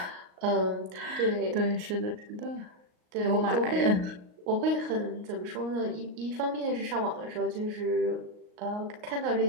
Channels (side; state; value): left; late; 38 ms